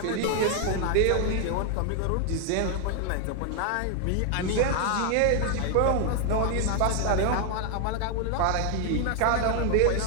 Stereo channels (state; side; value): different; both; correlation 0.00